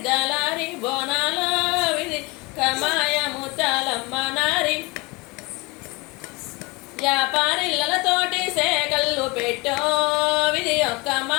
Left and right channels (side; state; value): right; quieter; 25.7 dB